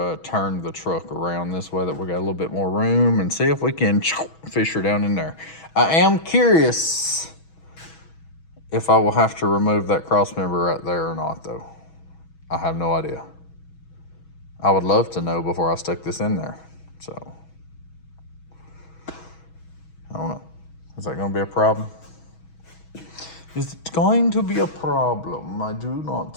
turn the truck around this way that we got a little bit more room and see if we can fish her down in there. I am curious if I will have to remove that cross member right there or not, though. I have no idea. I would love to know before I stick this in there. So, I don't know. Is that going to be a problem? Is it going to be a problem? I do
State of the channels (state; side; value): late; right; 6.2 ms